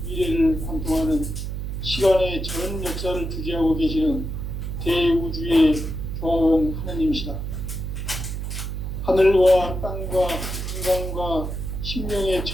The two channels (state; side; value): noise; right; hum, 4 dB below the sound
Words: 미래를 관통하는 시간의 전 역사를 주재하고 계시는 대우주의 조홍 하나님이시다. 하늘과 땅과 인간과 신명의